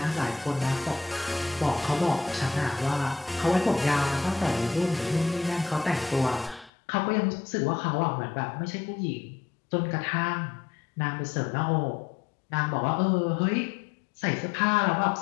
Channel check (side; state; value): right; drops out; at 6.7 s